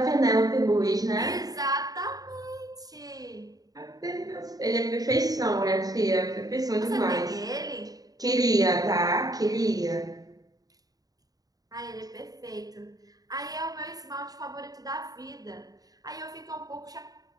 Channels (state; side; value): late; left; 0.18 ms